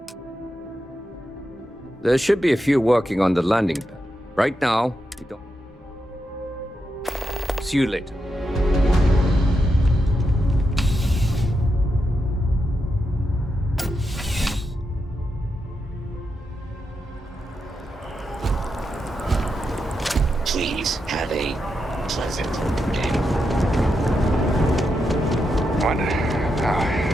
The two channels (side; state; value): both; normal; correlation 0.85